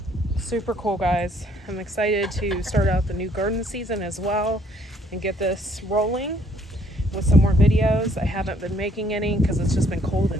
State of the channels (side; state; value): both; normal; correlation 0.64